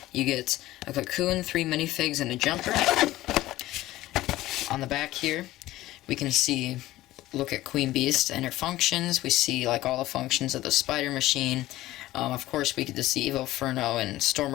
You get a Cocoon, 3 minifigs, and a Jumper. On the back here, we can see, look at Queen Beast and her functions. We see like all the functions of the Spider Machine. Of course, we get to see Evo, Furno, and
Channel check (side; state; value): right; quieter; 16.1 dB